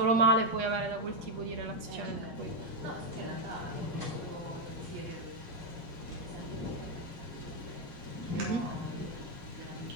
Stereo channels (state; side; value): late; left; 8.4 ms